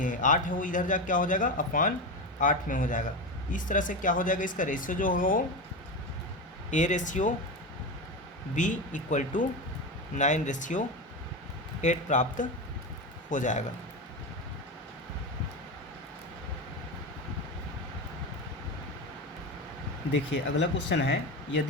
8 है वो इधर जा क्या हो जाएगा अपान 8 में हो जाएगा। इस तरह से क्या हो जाएगा इसका रेशियो जो होगा वो A ratio B equal to 9:8 प्राप्त हो जाएगा। देखिए अगला क्वेश्चन है,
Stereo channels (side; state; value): both; normal; correlation 0.19